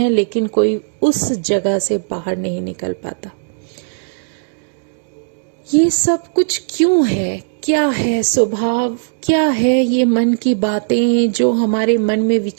लेकिन कोई उस जगह से बाहर नहीं निकल पाता। ये सब कुछ क्यों है? क्या है स्वभाव? क्या है ये मन की बातें जो हमारे मन में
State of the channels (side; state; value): left; silent; digital silence